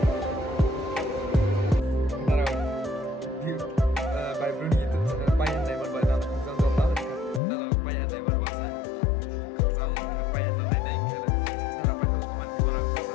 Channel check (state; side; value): drops out; right; at 7.4 s